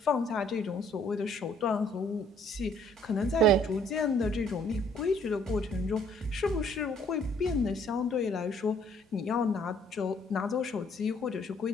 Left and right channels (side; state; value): both; normal; correlation 0.62